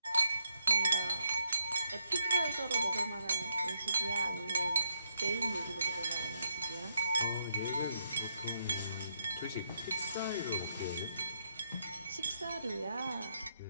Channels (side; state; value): both; inverted; correlation -0.77